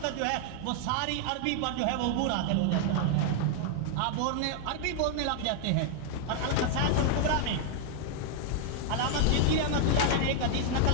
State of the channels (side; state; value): both; different; correlation 0.00